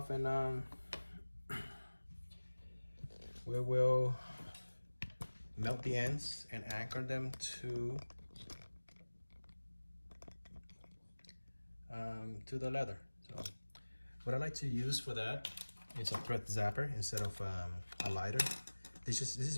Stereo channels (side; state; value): both; inverted; correlation -1.00